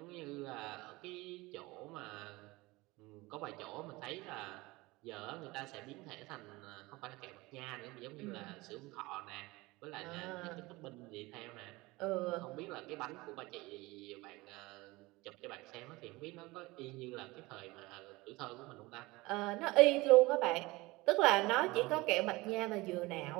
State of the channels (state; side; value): quieter; left; 21.7 dB